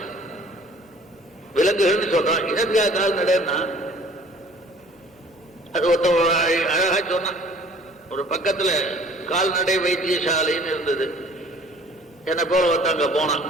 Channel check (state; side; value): normal; both; correlation 0.52